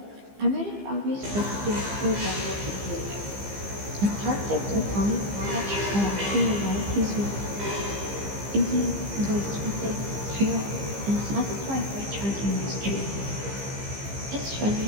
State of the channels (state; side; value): late; left; 15 ms